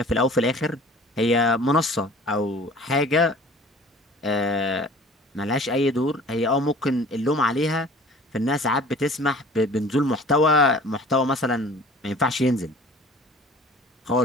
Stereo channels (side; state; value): both; normal; correlation 0.46